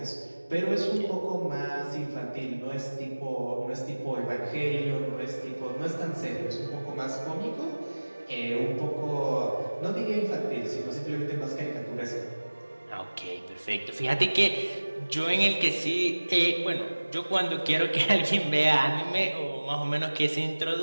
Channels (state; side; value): inverted; both; correlation -1.00